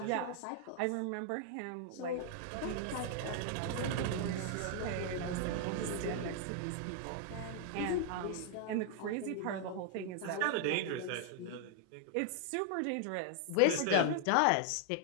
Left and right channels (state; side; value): different; both; correlation 0.00